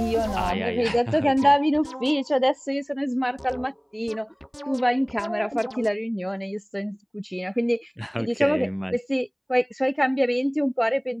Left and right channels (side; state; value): both; identical; correlation 1.00